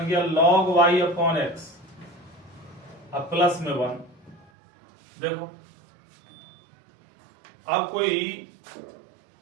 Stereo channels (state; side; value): drops out; left; at 4.5 s